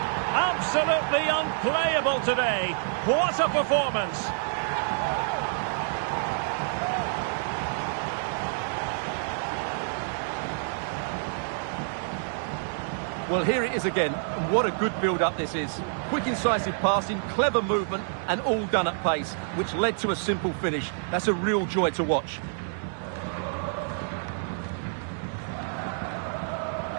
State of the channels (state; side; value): silent; left; digital silence